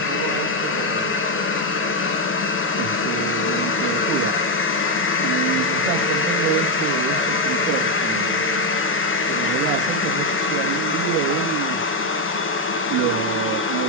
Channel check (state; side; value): normal; both; correlation 0.05